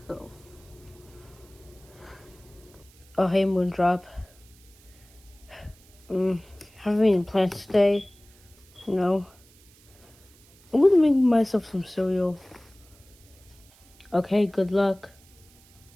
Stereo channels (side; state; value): right; noise; hiss, 27 dB below the sound